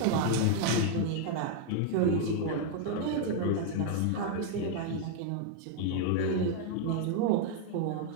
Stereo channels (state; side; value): different; both; correlation 0.00